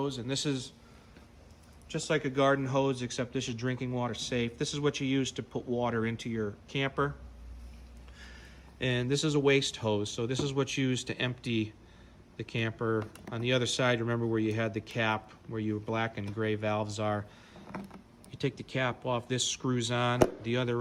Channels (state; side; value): identical; both; correlation 1.00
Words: and this is just like a garden hose, except this is drinking water safe. This is what you use to put water into your camper. And this is a waste hose, so this is what's used to empty the camper. On the other side, remember where you had the cap, where your black and gray valves are. You take the cap off, this screws on, the